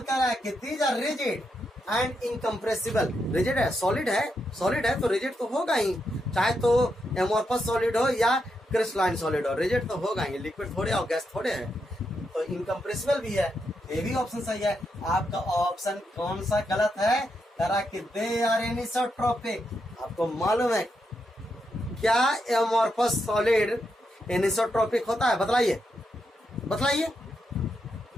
कह रहा है कि these are rigid and incompressible. Rigid है, सॉलिड है, सॉलिड है तो रिजिड तो होगा ही, चाहे तो एमोर्फस सॉलिड हो या क्रिस्टलाइन सॉलिड हो, रिजिड तो होगा ही, लिक्विड थोड़े और गैस थोड़े है। तो इनकम्प्रेसिबल भी है, ये भी ऑप्शन सही है। आपका ऑप्शन कौन सा गलत है, करा कि दे आर एनिसोट्रोपिक। आपको मालूम है क्या एमोर्फस सॉलिड एनिसोट्रोपिक होता है? बतलाइए, बतलाइए।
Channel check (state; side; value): normal; both; correlation 0.83